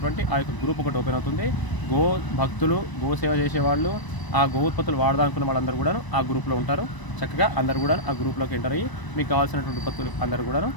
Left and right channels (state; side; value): late; right; 1.0 ms